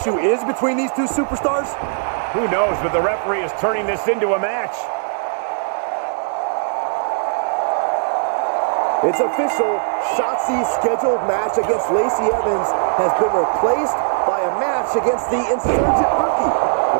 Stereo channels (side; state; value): left; silent; digital silence